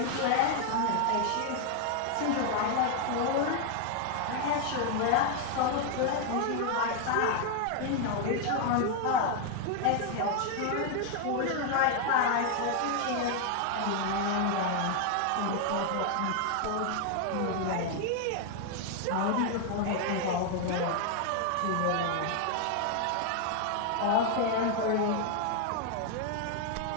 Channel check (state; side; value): different; both; correlation 0.00